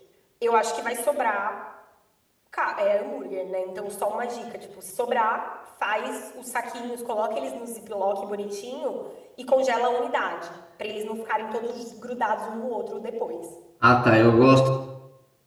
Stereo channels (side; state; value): both; identical; correlation 1.00